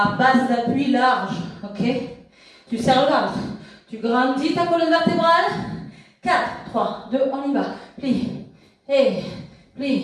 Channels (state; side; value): identical; both; correlation 1.00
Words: base d'appui large. Ok? Tu serres le ventre. Tu grandis ta colonne vertébrale. 4, 3, 2, on y va. Plie. Et